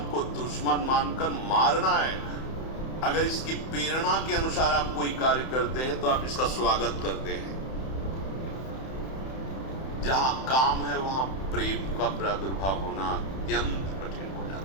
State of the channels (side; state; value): right; late; 31 ms